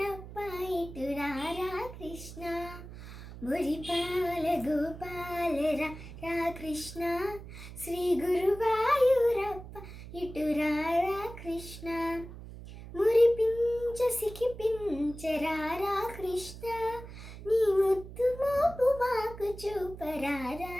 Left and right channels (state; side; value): noise; right; hum, 13 dB below the sound